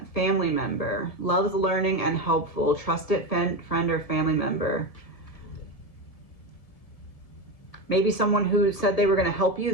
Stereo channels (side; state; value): right; late; 1.7 ms